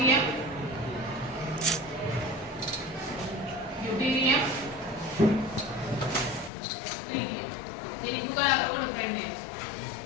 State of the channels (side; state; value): right; drops out; at 6.5 s